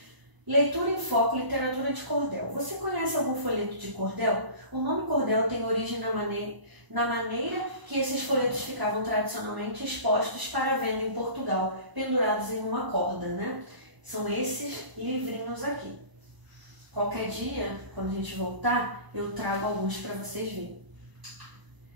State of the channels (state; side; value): late; left; 1.0 ms